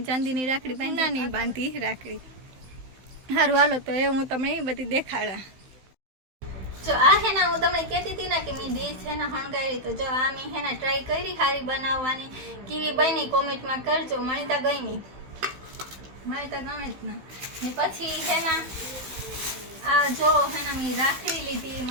चांदीनी राखड़ी बांधा नहीं बांधी राखड़ी। हारू हालो तो ए हूँ तमने बधी देखाड़ा। जो आ है ना हूँ तमने कहती थी ना कि मैं डिश है ना हणगायरी, तो जो आ मैं है ना ट्राय करी हारी बनाववानी केवी बनी कमेंट में करजो। मने तो गमी, मने तो गमे ज ना। ने पछी है ना आ जो है ना मैं राखड़ी लीधी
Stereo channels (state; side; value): late; left; 16 ms